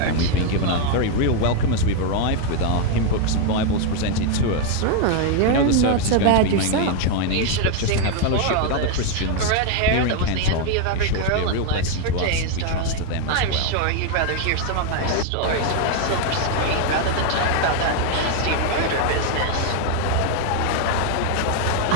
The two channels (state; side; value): different; both; correlation 0.01